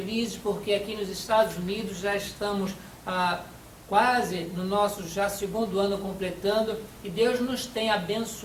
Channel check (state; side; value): identical; both; correlation 1.00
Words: porque aqui nos Estados Unidos já estamos quase no nosso já segundo ano completando, e Deus nos tem